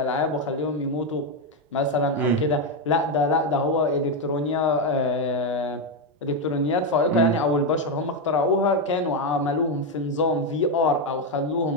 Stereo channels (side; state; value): both; normal; correlation 0.06